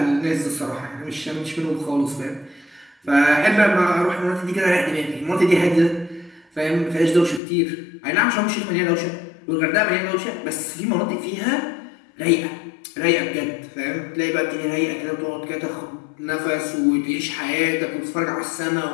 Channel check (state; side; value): drops out; right; at 7.4 s